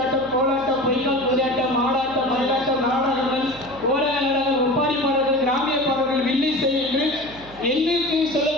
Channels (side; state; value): right; noise; hum, 20 dB below the sound